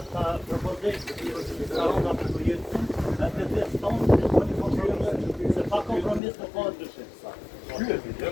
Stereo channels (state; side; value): drops out; right; at 6.2 s